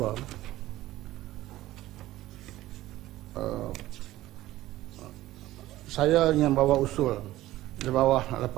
saya ingin bawa usul di bawah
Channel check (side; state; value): left; quieter; 15.7 dB